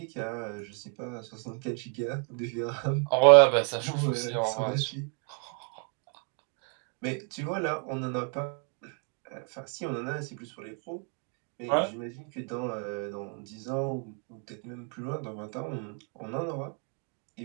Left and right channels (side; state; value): left; quieter; 38.6 dB